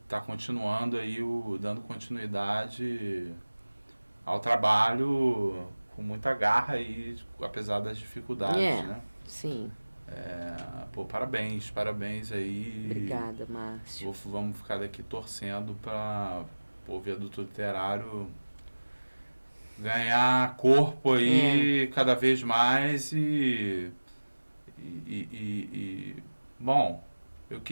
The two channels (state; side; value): inverted; both; correlation -1.00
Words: continuando aí, dando continuidade ao trabalho com muita garra aí, apesar das dificuldades, né? Sim. Parabéns aí. Obrigada, Márcio. Vamos ficar daqui torcendo para o Viaduto Literário ganhar corpo aí cada vez mais bom, eu